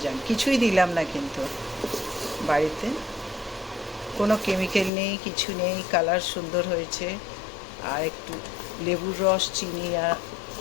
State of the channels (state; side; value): drops out; right; at 4.9 s